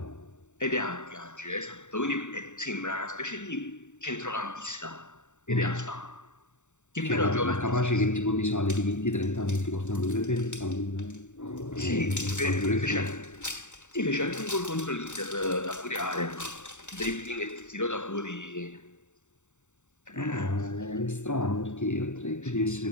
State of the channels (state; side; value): late; right; 0.84 ms